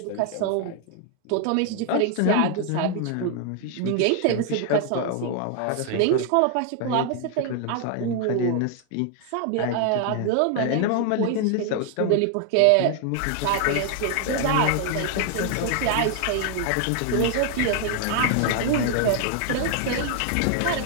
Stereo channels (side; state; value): both; different; correlation 0.00